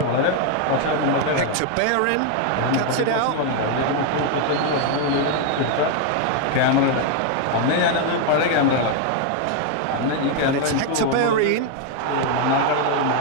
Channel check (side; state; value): both; different; correlation 0.00